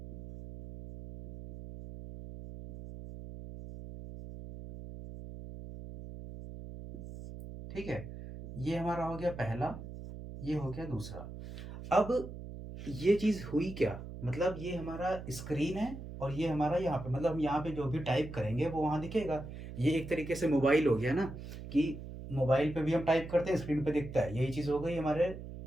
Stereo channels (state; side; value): noise; right; hum, 11 dB below the sound